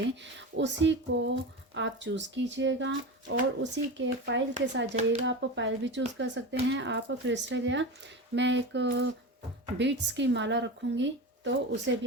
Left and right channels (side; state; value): both; normal; correlation 0.25